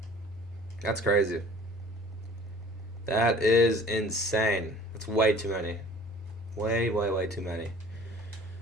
That's crazy. That is insane. That's way too many. Way too many.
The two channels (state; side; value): normal; both; correlation 0.49